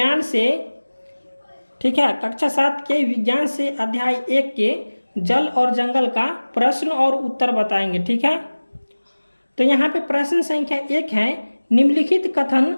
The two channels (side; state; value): both; inverted; correlation -1.00